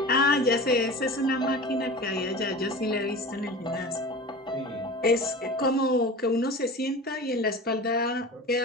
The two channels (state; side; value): normal; both; correlation 0.34